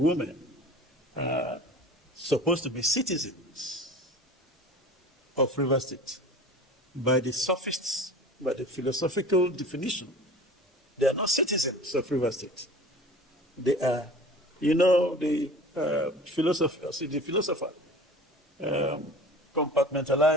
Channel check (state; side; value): normal; both; correlation 0.40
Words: women are supposed to be citizens of River State. By the sophists, by the philosophical definition, they are not citizens of River State. They are, the philosopher